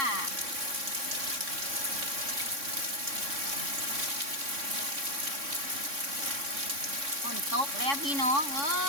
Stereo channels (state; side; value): late; left; 3.6 ms